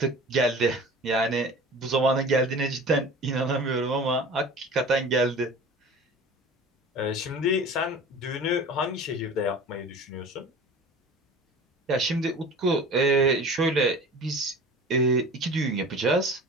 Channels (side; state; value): both; normal; correlation 0.39